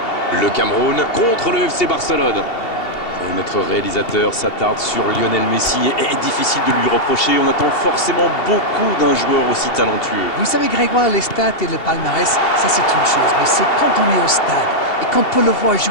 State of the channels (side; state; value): right; late; 2.7 ms